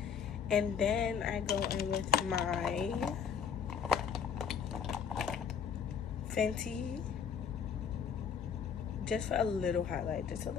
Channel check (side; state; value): right; quieter; 7.2 dB